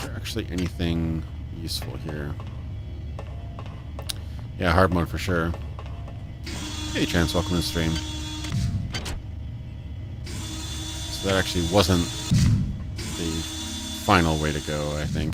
actually anything useful here? Yeah, hard mode for sure. Hey, Chance, welcome to the stream. So that actually wasn't the final way to go, I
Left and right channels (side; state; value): both; identical; correlation 1.00